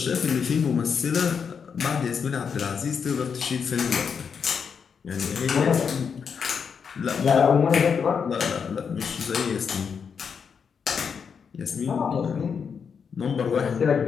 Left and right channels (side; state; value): right; quieter; 6.4 dB